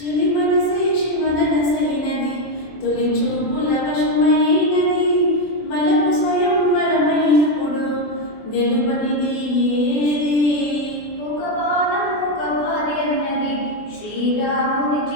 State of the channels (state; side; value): late; right; 24 ms